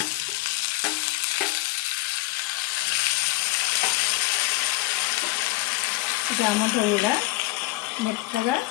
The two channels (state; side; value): quieter; right; 21.0 dB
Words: టమాటా కూడా మెత్తగా